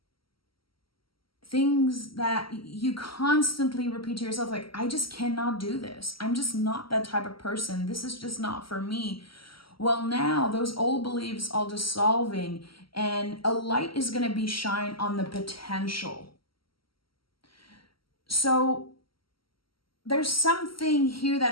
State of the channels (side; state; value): right; late; 0.74 ms